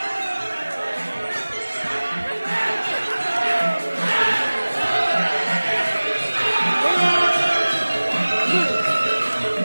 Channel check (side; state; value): both; inverted; correlation -1.00